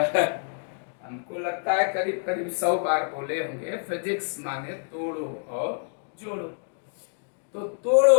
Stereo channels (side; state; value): right; silent; digital silence